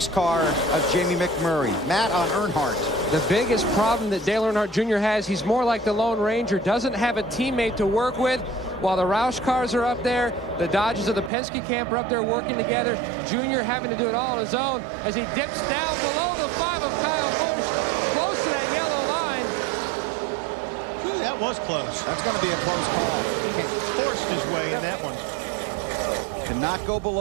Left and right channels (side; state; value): left; drops out; at 11.3 s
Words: car of Jamie McMurray. Matt on Earnhardt. The biggest problem that Dale Earnhardt Jr. has, he's more like the Lone Ranger, doesn't have a teammate to work with. While the Roush cars are up there, the Dodges of the Penske camp are up there working together. Junior having to do it all on his own as he dips down below the 5 of Kyle Busch, close to that yellow line. Ooh, that was close. That's going to be a close call. He forced his way in that one. Cannot go